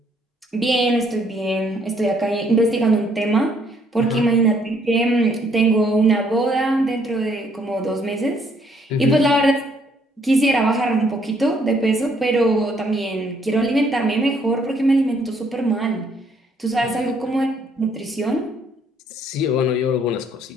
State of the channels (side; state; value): both; normal; correlation 0.67